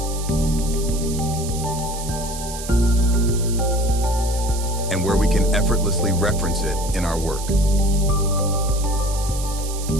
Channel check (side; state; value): right; noise; hiss, 10 dB below the sound